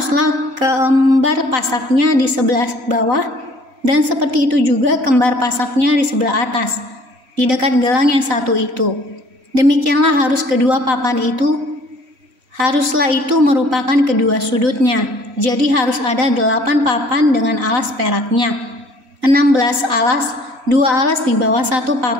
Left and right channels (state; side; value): late; left; 3.1 ms